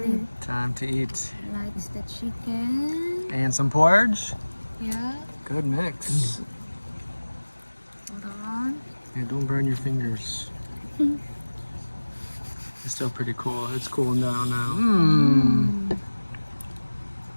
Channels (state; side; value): inverted; both; correlation -1.00